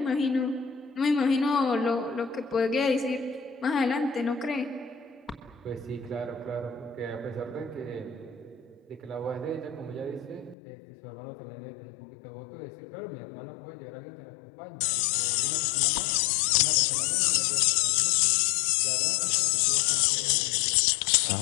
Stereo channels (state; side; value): drops out; right; at 10.6 s